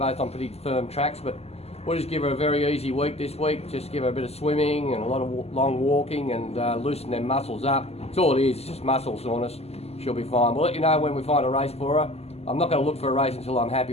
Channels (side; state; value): right; late; 0.30 ms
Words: on pretty firm tracks. But we'll just give her a very easy week this week. Just give her a bit of swimming and a lot of long walking and loosen them muscles up. That's all it is, it's just muscle soreness. She'll be fine. We'll let you know when we find a race for her. I'm not going to look for a race until I'm happy